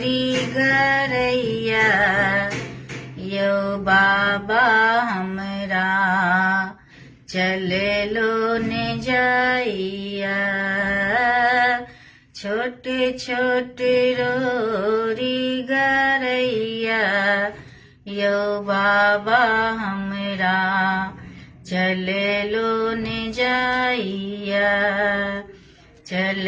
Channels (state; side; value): identical; both; correlation 1.00